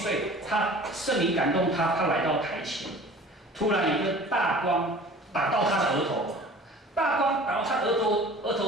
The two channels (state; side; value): normal; both; correlation 0.44